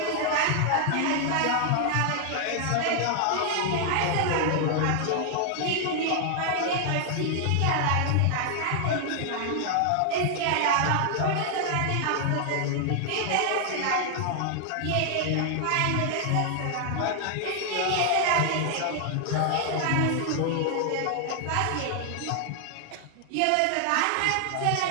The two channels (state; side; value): different; both; correlation 0.00